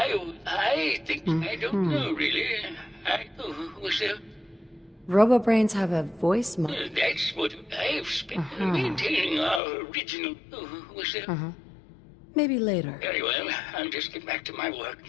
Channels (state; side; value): drops out; right; at 9.6 s